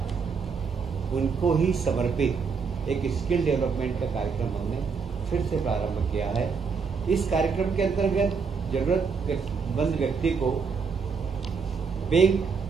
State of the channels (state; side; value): quieter; left; 5.4 dB